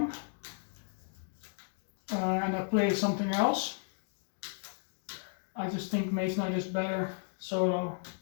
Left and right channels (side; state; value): right; silent; digital silence